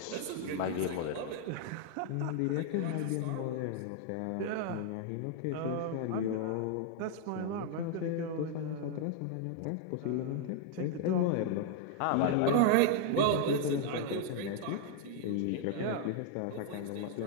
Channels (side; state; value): both; different; correlation -0.01